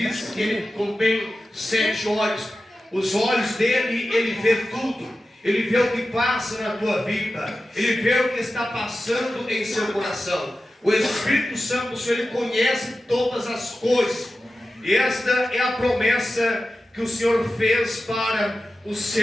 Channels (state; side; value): normal; both; correlation 0.93